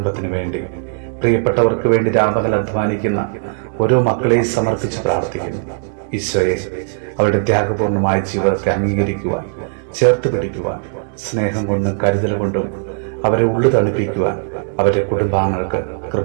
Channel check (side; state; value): left; silent; digital silence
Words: വേണ്ടി, പ്രിയപ്പെട്ടവർക്ക് വേണ്ടി രാപകൽ അധ്വാനിക്കുന്ന ഓരോ മക്കളെയും സമർപ്പിച്ച് പ്രാർത്ഥിക്കുന്നു. ഈശോയെ, അവരുടെ ത്യാഗപൂർണമായ ജീവിതത്തെ അംഗീകരിക്കുവാൻ, ചേർത്ത് പിടിക്കുവാൻ, സ്നേഹം കൊണ്ടും കരുതൽ കൊണ്ടും അവരെ ഉള്ളു തണുപ്പിക്കുവാൻ അവരുടെ കുടുംബാംഗങ്ങൾക്ക്